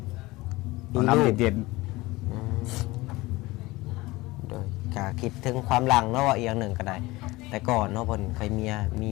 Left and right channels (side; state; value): right; quieter; 20.7 dB